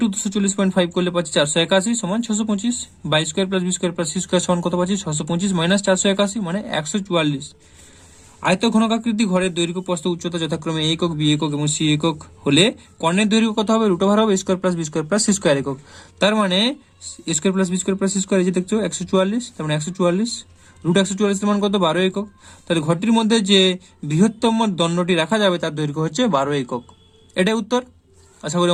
240.5 করলে পাচ্ছি 481 সমান 625, বা square plus B square plus C square সমান কত পাচ্ছি? 625 মাইনাস 481 মানে 144। আয়ত ঘনকাকৃতি ঘরের দৈর্ঘ্য প্রস্থ উচ্চতা যথাক্রমে এ একক, বি একক এবং সি একক হলে কর্ণের দৈর্ঘ্য কত হবে? √ওভার হবে square plus B square plus C square একক। তার মানে square plus B square plus C square এই যে দেখছো 144, তার মানে 144 √144 এর মান কত? 12 একক। তাহলে ঘরটির মধ্যে যে বৃহত্তম দণ্ডটি রাখা যাবে তার দৈর্ঘ্য হচ্ছে 12 একক। এটাই উত্তর। আশা করি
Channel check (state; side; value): identical; both; correlation 1.00